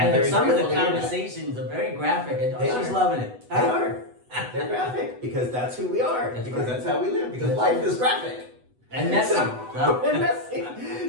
very some of grateful the to hear that. conversations are very graphic, and They she's are. loving it. They are. They're graphic because that's who we are. That's because right. that's how we live. Because That's life is graphic. And messy. And messy.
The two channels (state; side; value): late; left; 8.1 ms